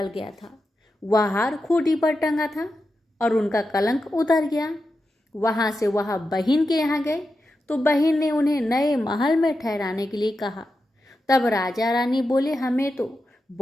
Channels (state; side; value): normal; both; correlation 0.89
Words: गया था वह हार खूंटी पर टंगा था और उनका कलंक उतर गया। वहां से वह बहन के यहाँ गए तो बहन ने उन्हें नए महल में ठहराने के लिए कहा। तब राजा रानी बोले हमें तो